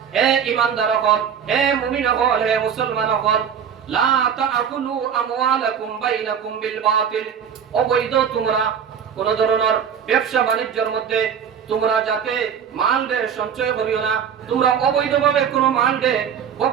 হে ইমানদার হল হে মুমিন হল হে মুসলমান হল লা তাকুলু আমওয়ালাকুম বাইনাকুম বিল বাতিল অবৈধ তোমরা কোন ধরনের ব্যবসা বাণিজ্যের মধ্যে তোমরা যাতে মাল দে সঞ্চয় করিও না তোমরা অবৈধভাবে কোনো মাল দে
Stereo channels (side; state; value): left; quieter; 7.7 dB